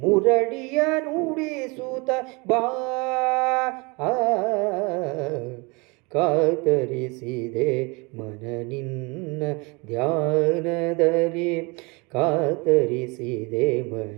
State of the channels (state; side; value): quieter; left; 28.0 dB